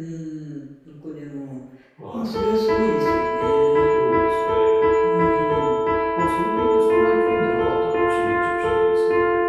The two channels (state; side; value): identical; both; correlation 1.00